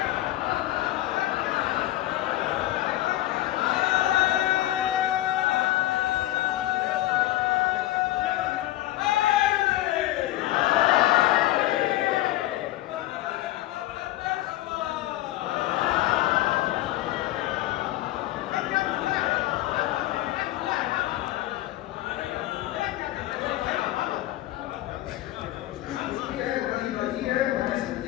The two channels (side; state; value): right; quieter; 15.7 dB